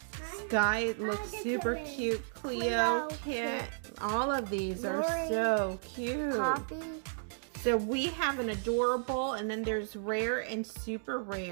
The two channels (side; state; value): left; silent; digital silence